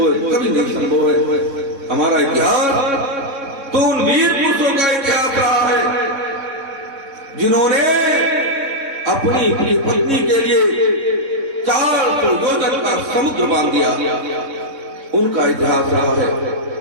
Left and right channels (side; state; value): left; late; 3.7 ms